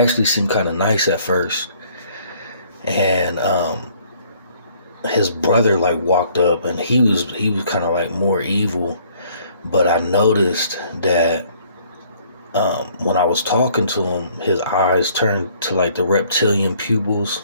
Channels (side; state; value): both; inverted; correlation -0.61